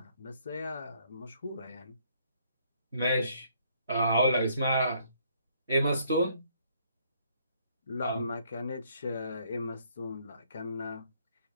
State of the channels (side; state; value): both; inverted; correlation -0.66